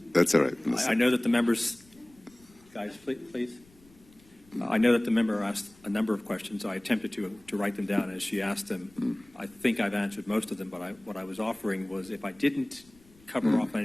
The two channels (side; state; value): left; noise; rumble, 28 dB below the sound